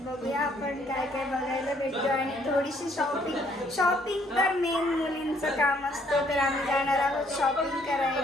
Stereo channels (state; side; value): normal; both; correlation 0.66